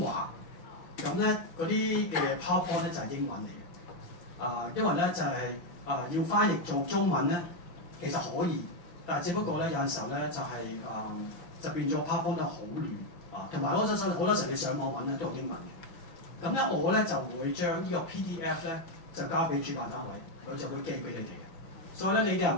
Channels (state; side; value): late; right; 6.0 ms